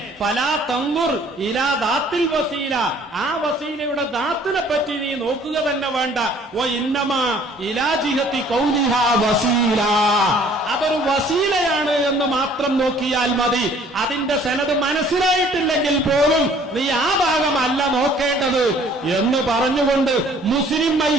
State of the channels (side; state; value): both; normal; correlation 0.56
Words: ഫലാ തൻദുർ ഇലാ ദാത്തിൽ വസീല, ആ വസീലയുടെ ദാത്തിനെ പറ്റി നീ നോക്കുക തന്നെ വേണ്ട. വഇന്നമാ ഇലാ ജിഹത്തി ഖൗലിഹാ വസീല, അതൊരു വസീലയാണ് എന്ന് മാത്രം നോക്കിയാൽ മതി. അതിന്റെ സനദ് മനസ്സിലായിട്ടില്ലെങ്കിൽ പോലും നീ ആ ഭാഗമല്ല നോക്കേണ്ടത് എന്ന് പറഞ്ഞുകൊണ്ട് മുസ്ലിം